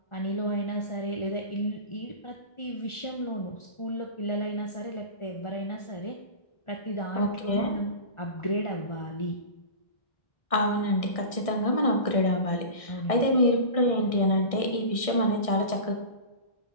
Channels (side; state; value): right; late; 1.6 ms